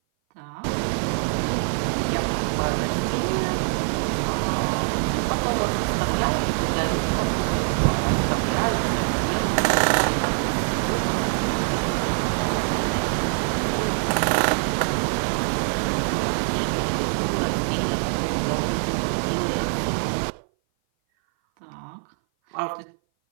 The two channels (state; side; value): silent; left; 58 dB below the other